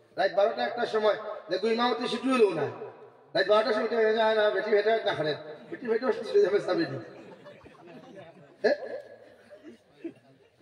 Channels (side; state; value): both; identical; correlation 1.00